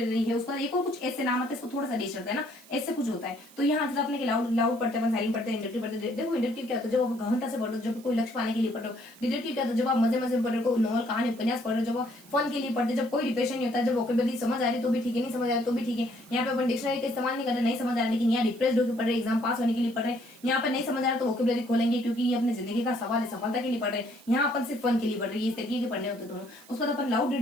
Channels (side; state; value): right; noise; hiss, 24 dB below the sound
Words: है, उसके बाद एक और कुछ ऐसे नाम आते हैं, इसको थोड़ा सा डेश रहता है ना, ऐसे कुछ होता है। तो यहाँ जैसे अपने लाउड पढ़ते हैं, साइलेंट पढ़ते हैं, इंडक्टिव पढ़ते हैं। देखो इंडक्टिव क्या होता है, जब आप गहनता से पढ़ो, जब कोई लक्ष्य पाने के लिए पढ़ो। डिडक्टिव क्या होता है, जब आप मजे मजे में पढ़ रहे हो, नॉवल, कहानी, उपन्यास पढ़ रहे हो, जब फन के लिए पढ़ते, जब कोई डिप्रेशन नहीं होता, जब वोकेबुलरी समझ आ रही तो भी ठीक है, नहीं समझ आ रही तो भी ठीक है। यहाँ पे अपन डिक्शनरी का इस्तेमाल नहीं कर रहे, नहीं समझ आ रहा, लेकिन यहाँ डिप्रेस्ड होकर पढ़ रहे, एग्जाम पास होने के लिए पढ़ रहे। यहाँ पे नहीं समझ आ रहा तो वोकेबुलरी खोलेंगे, क्योंकि ये अपने जिंदगी का सवाल है, सफलता के लिए पढ़ रहे हैं। यहाँ अपन सिर्फ फन के लिए पढ़ रहे हैं, इस तरीके के पढ़ने होते हैं दोनों। उसके बाद अपन लाउड